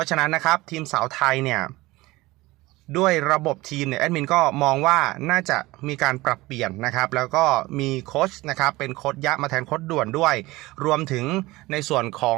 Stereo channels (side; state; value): left; quieter; 20.0 dB